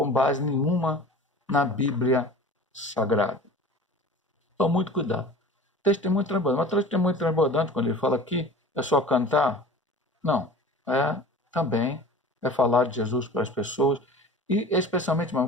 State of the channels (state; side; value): normal; both; correlation 0.40